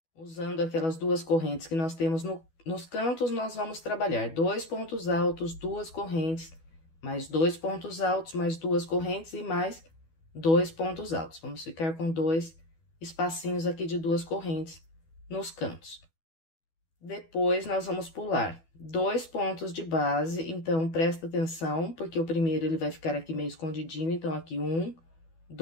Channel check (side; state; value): right; late; 12 ms